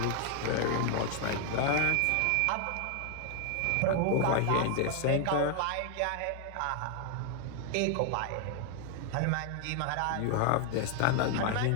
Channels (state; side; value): different; both; correlation 0.00